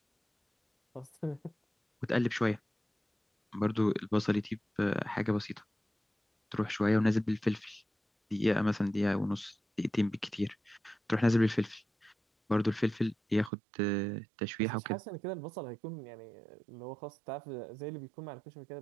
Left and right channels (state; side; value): drops out; left; at 13.5 s